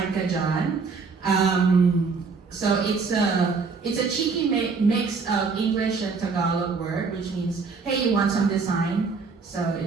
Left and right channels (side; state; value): left; quieter; 4.7 dB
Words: Kajan. So it's a cheeky mix of English and Tagalog word, which means, hey, you want some design? So